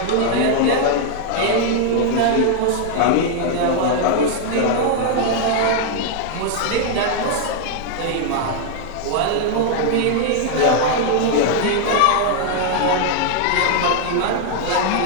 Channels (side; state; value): both; different; correlation 0.00